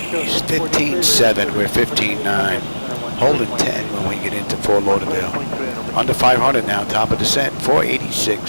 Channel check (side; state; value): both; inverted; correlation -1.00